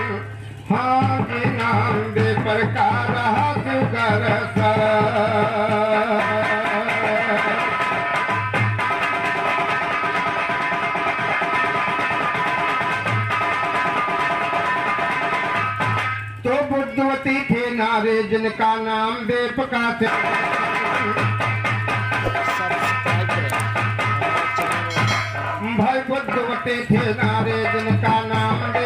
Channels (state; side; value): identical; both; correlation 1.00